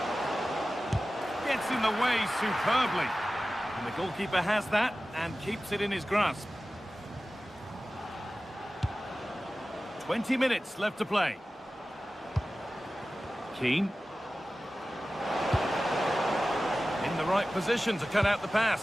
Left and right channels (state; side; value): normal; both; correlation 0.96